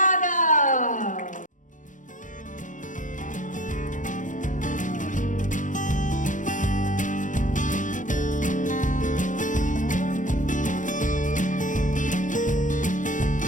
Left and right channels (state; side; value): late; right; 0.37 ms